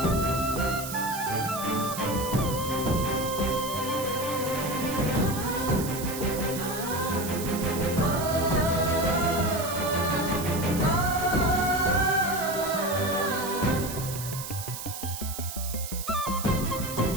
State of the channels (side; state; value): right; noise; hiss, 8 dB below the sound